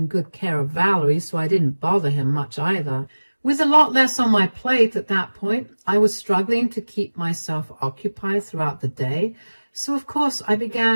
good care of Valerie, so I didn't bother him much either. With a lot less on my plate at that point, I was struggling to keep myself occupied throughout the day, so of course I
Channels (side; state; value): both; inverted; correlation -1.00